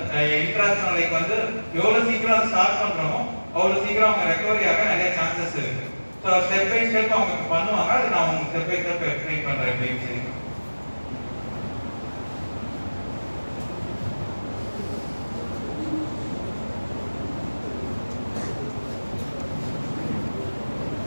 இன்ட்ராக்ஷன் லைக் வந்து எவ்வளவு சீக்கிரம் ஸ்டார்ட் பண்றோமோ அவ்வளவு சீக்கிரம் அவங்க ரெக்கவரி ஆக நிறைய சான்சஸ் இருக்கு. ஸோ ஸ்டெப் பை ஸ்டெப் அவங்க பண்ணுவாங்க. அது நான் உங்களுக்கு ஸ்டெப் பை ஸ்டெப் எக்ஸ்பிளைன் பண்றேன் அப்படின்னு சொல்லி.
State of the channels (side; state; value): both; inverted; correlation -1.00